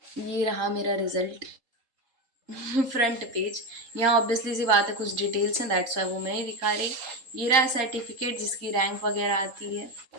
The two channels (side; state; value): left; late; 3.8 ms